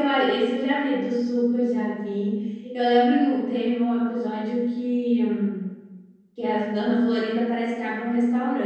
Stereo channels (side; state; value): both; identical; correlation 1.00